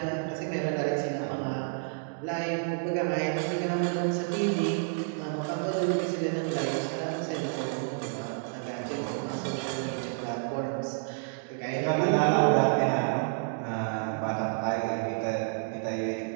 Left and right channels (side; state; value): left; silent; digital silence